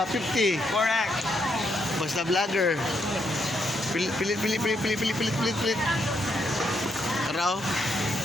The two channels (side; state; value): both; normal; correlation 0.77